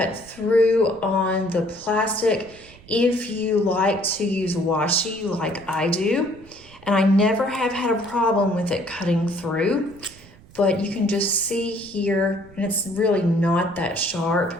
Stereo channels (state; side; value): noise; right; rumble, 23 dB below the sound